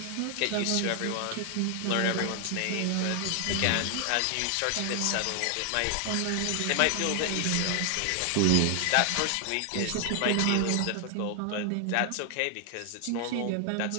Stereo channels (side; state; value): both; different; correlation 0.00